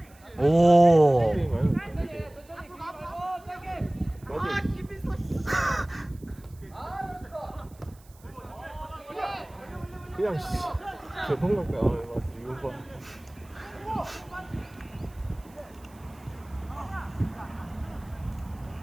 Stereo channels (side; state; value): right; noise; hiss, 28 dB below the sound